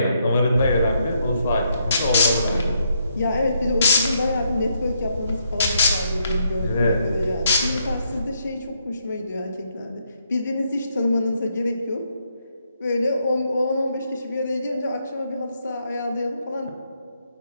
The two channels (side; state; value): both; inverted; correlation -0.76